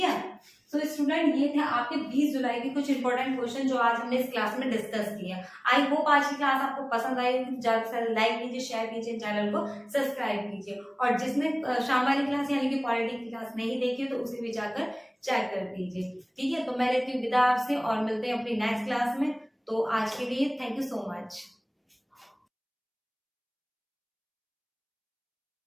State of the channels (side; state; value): both; identical; correlation 1.00